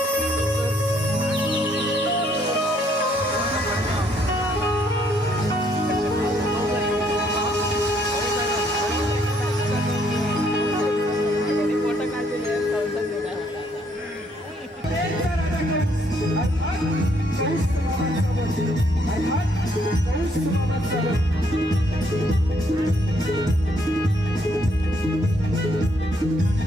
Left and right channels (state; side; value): normal; both; correlation 0.69